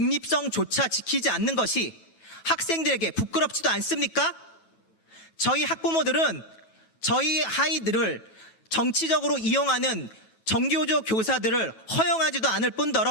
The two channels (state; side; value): late; right; 9.2 ms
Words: 지키지 않는 것이 학생들에게 부끄럽지도 않습니까? 저희 학부모들은 저희 아이들을 정치적으로 이용하는 전교조 교사들을 허용하지도 않을